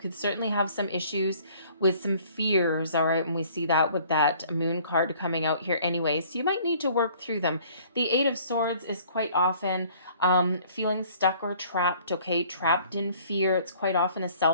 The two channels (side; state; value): both; inverted; correlation -0.55